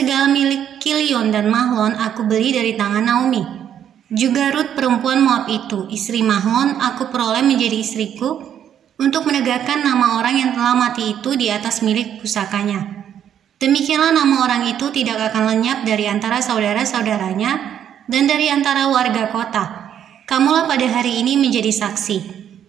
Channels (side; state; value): left; quieter; 9.6 dB